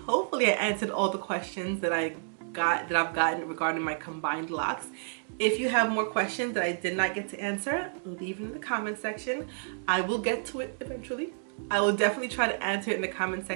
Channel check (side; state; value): left; silent; digital silence